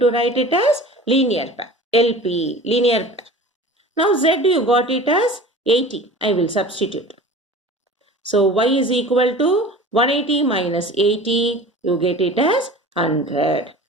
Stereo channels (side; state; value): both; normal; correlation 0.39